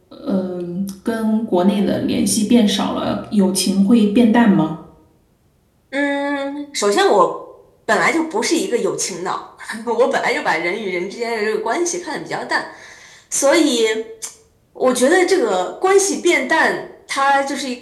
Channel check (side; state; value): both; identical; correlation 1.00